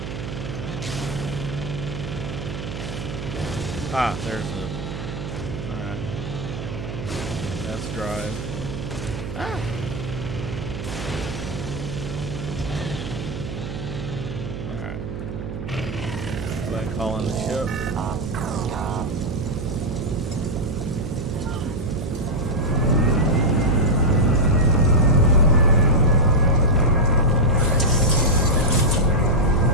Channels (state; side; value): noise; right; hum, 7 dB below the sound